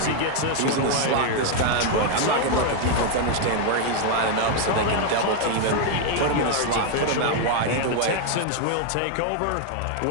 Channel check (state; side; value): different; both; correlation 0.00